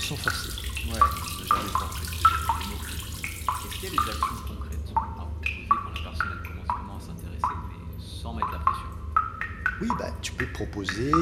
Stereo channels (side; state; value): both; identical; correlation 1.00